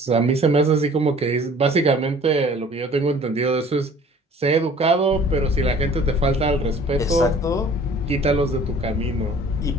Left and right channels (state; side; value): normal; both; correlation 0.50